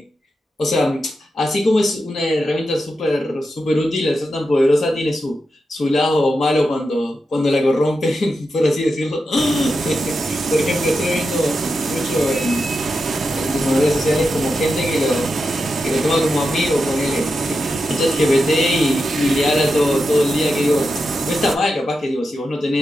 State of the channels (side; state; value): both; normal; correlation 0.88